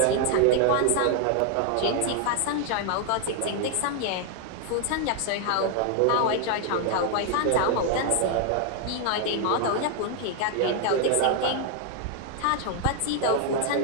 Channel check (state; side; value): different; both; correlation 0.00